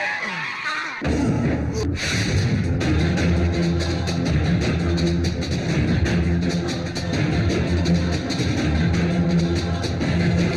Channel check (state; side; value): identical; both; correlation 1.00